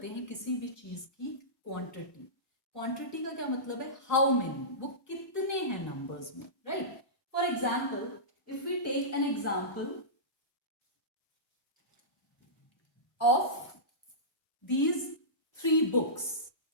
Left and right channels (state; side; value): normal; both; correlation -0.19